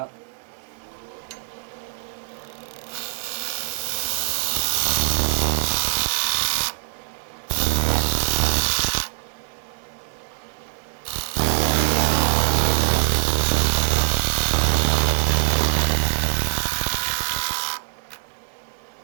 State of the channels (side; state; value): left; silent; 60 dB below the other